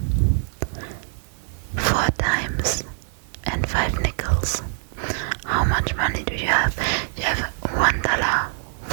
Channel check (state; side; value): silent; left; 60 dB below the other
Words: 4 times and 5 nickels, how much money do you have? You have